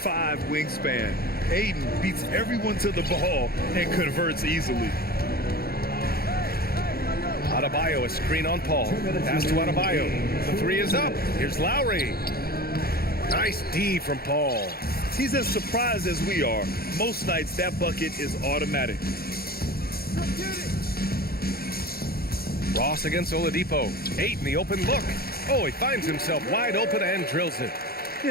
wingspan. Ayton beats everyone to the ball and converts easily. Adebayo, a screen on Paul. Pass to Adebayo. The three is up. Here's Lowry. Nice D from Paul. He's as surprised as we are. Most nights, that bucket is automatic. Ross against Oladipo. Ayton, the open look. Oh, he finds himself wide open and drills it.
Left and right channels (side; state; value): right; late; 0.44 ms